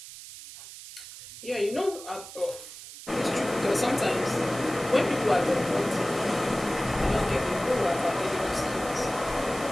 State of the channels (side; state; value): right; noise; hiss, 14 dB below the sound